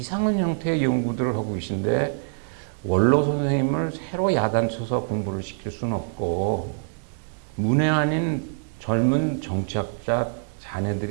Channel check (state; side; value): silent; left; digital silence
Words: 형태의 연구들을 하고 계신데 원로 선생님을 새로 야단쳐서 공부를 시킬 수는 없고 문외 아닌 젊은 정치학자